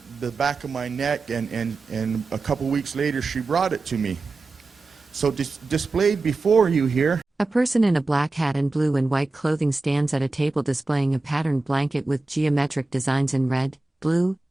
the back of my neck, and a couple weeks later, she brought it to me. So displayed before you here, A person in a black hat and blue and white clothing stands at a table displaying a patterned blanket with geometric designs in red, blue,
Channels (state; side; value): quieter; left; 3.4 dB